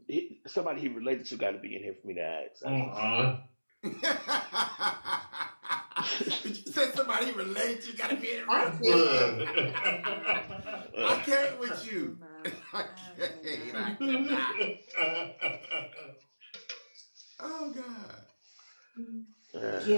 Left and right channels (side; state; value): both; inverted; correlation -1.00